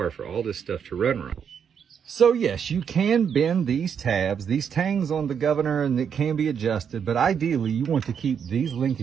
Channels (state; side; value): quieter; left; 7.5 dB